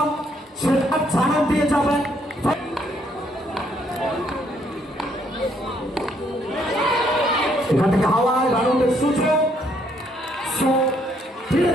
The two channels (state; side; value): normal; both; correlation 0.70